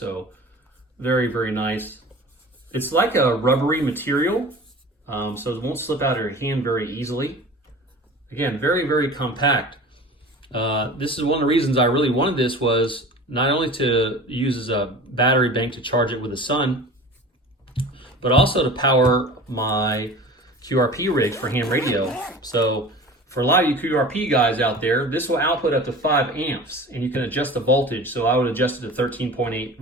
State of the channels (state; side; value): normal; both; correlation 0.38